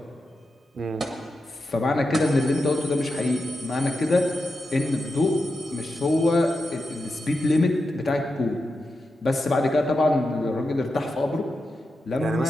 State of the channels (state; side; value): normal; both; correlation 0.89